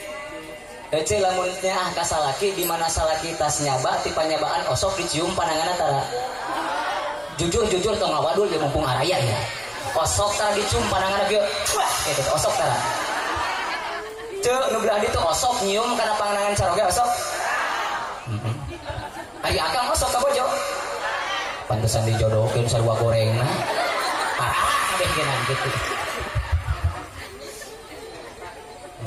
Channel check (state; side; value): identical; both; correlation 1.00